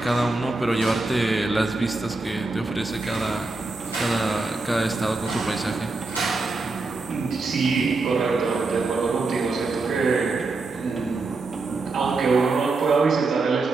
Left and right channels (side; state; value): left; quieter; 3.5 dB